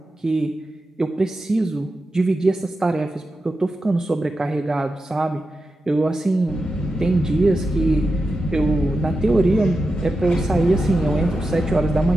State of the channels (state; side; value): normal; both; correlation 0.90